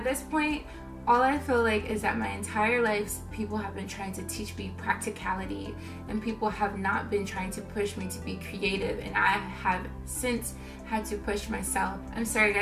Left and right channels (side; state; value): both; identical; correlation 1.00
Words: this point, all I feel like is that my entire life, people have been trying to teach me practicality, and people have not been trying to push me to be creative, and I have since had to push myself. I'm sorry